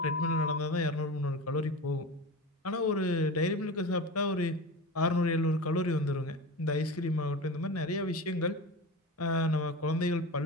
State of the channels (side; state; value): both; normal; correlation 0.28